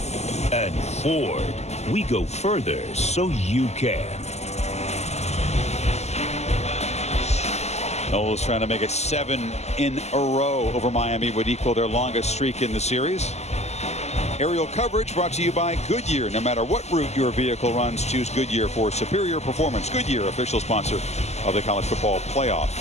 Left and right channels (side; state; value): right; late; 0.32 ms